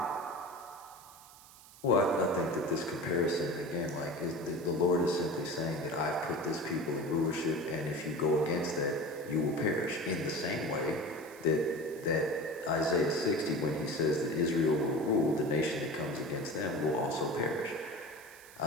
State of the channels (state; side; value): noise; right; hiss, 21 dB below the sound